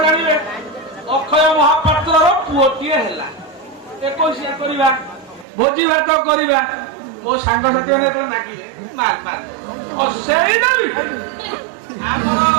ଜାଣିବେ ଅକ୍ଷୟ ମହାପାତ୍ରର ପୁଅଟିଏ ହେଲା 21 କରିବା ଭୋଜି ଭାତ କରିବା ମୋ ସାଙ୍ଗସାଥି ମାନେ ମାଗିବେ ସେଇଟା ବି ଆମର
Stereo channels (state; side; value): drops out; left; at 5.5 s